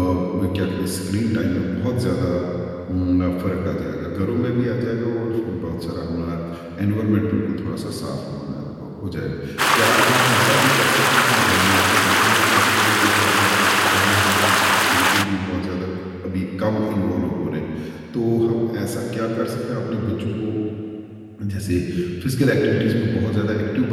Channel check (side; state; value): both; identical; correlation 1.00